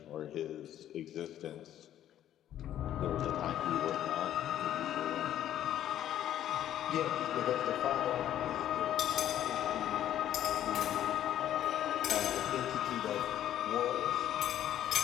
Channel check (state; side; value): quieter; right; 11.5 dB